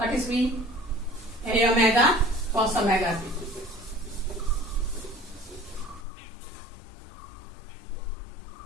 is v? A omega cos omega t.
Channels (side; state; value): right; drops out; at 6.1 s